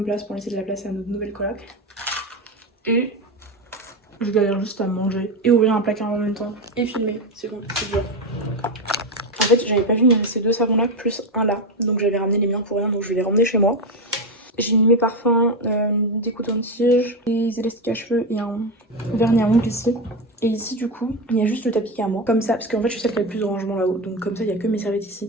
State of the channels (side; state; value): both; normal; correlation 0.13